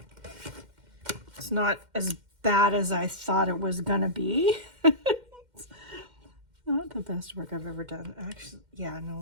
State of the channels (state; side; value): late; left; 2.1 ms